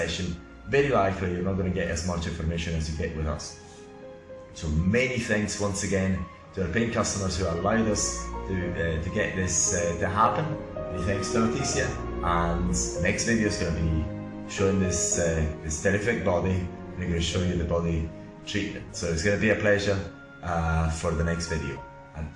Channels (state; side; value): identical; both; correlation 1.00